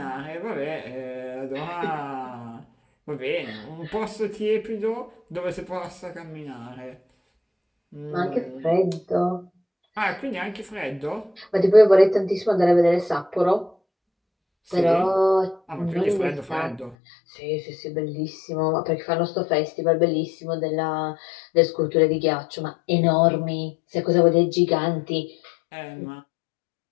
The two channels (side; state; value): right; drops out; at 16.9 s